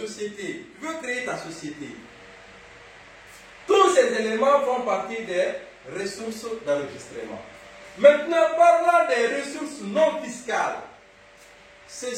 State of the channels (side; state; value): both; identical; correlation 1.00